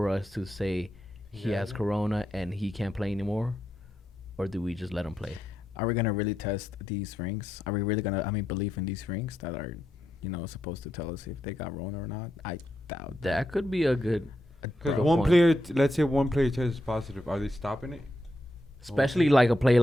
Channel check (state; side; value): normal; both; correlation 0.84